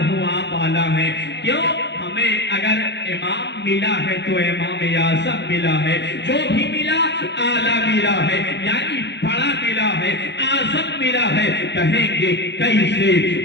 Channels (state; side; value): late; right; 0.50 ms